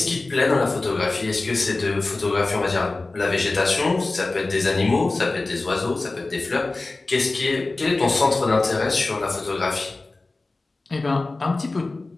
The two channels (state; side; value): quieter; right; 3.3 dB